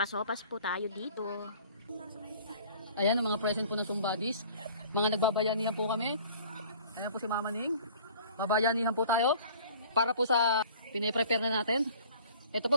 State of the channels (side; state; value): both; inverted; correlation -0.49